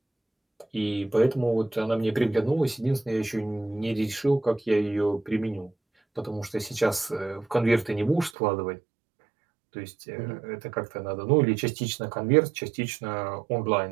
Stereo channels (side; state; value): left; drops out; at 8.3 s